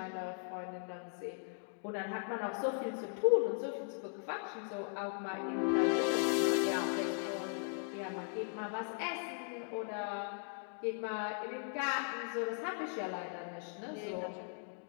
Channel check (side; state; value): right; silent; 52 dB below the other